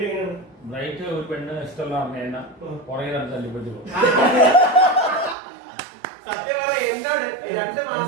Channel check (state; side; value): drops out; left; at 5.4 s